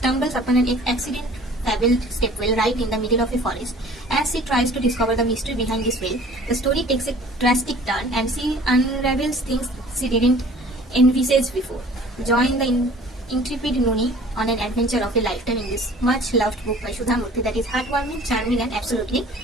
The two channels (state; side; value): normal; both; correlation 0.49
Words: upon an accident-fabbled stepwell right in the middle of a forest. As she tries to discover the mystery behind this well, the story takes a drastic turn and she unravels things she didn't envisage before. Join the intrepid Nuni on an adventure of a lifetime in this much-loved book by Sudha Murti that is heartwarming, charming, and absolutely